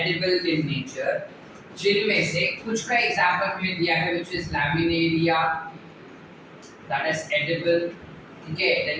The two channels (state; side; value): identical; both; correlation 1.00